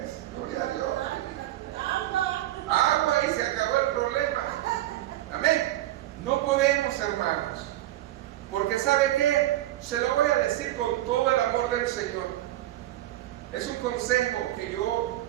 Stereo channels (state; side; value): quieter; left; 14.9 dB